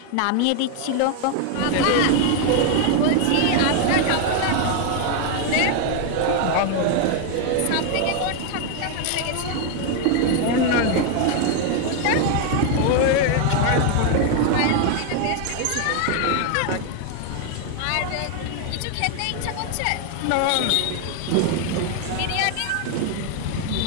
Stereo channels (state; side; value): different; both; correlation 0.01